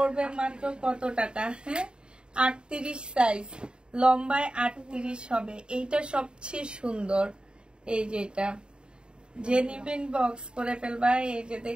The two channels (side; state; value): left; late; 0.050 ms